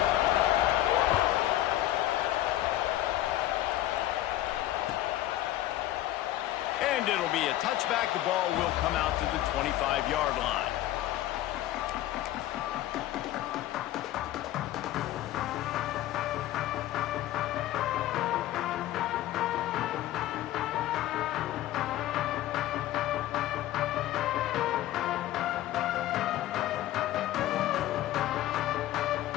And it'll be a touchback. The ball will come out to the 25-yard line.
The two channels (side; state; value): right; quieter; 14.2 dB